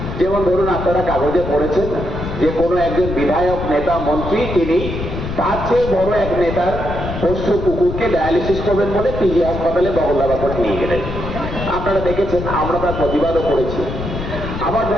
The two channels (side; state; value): left; noise; rumble, 6 dB below the sound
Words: যেমন ধরুন, আপনারা কাগজে পড়েছেন যে কোনো একজন বিধায়ক, নেতা, মন্ত্রী তিনি তার চেয়ে বড় এক নেতার পোষ্য কুকুরকে ডায়ালিসিস করবেন বলে পিজি হাসপাতালে বগলদাবা করে নিয়ে গেলেন। আপনারা দেখেছেন, আমরা তার প্রতিবাদও করেছি। আবার